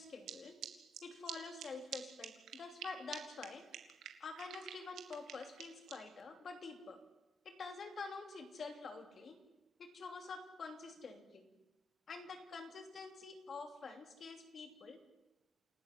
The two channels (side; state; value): both; normal; correlation 0.75